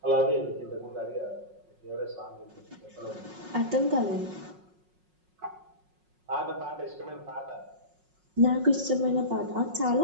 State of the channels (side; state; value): left; late; 5.5 ms